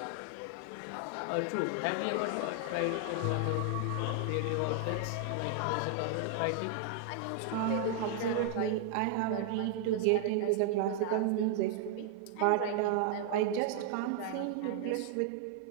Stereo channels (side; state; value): both; different; correlation 0.00